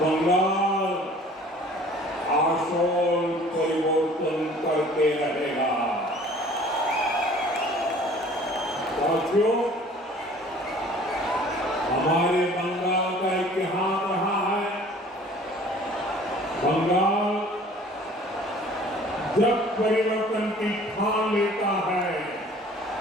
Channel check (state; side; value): normal; both; correlation 0.50